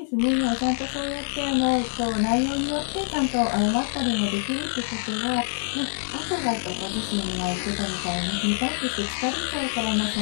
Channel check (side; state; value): right; silent; digital silence